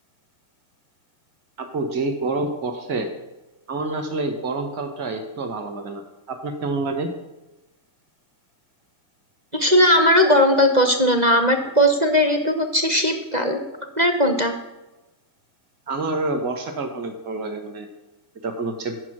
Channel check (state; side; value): late; left; 2.0 ms